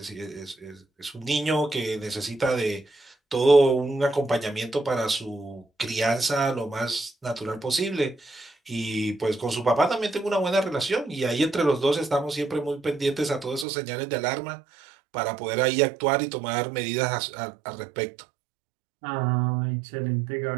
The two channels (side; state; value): left; drops out; at 13.7 s